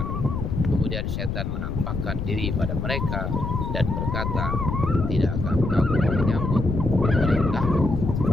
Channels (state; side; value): noise; left; rumble, 2 dB below the sound